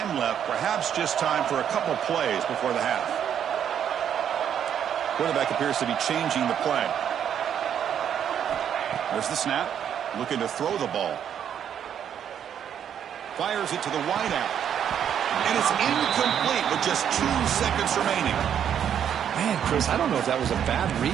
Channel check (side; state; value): left; quieter; 9.0 dB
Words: left. Perhaps just time for a couple plays before the half. Quarterback appears to be changing the play. There's the snap. Looking to throw the ball. Fires it to the wideout. And it's incomplete with just 2 seconds remaining. Man, Chris, I don't know if that was a bad